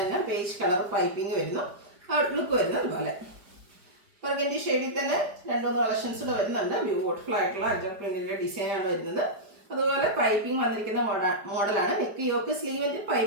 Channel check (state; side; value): late; left; 4.9 ms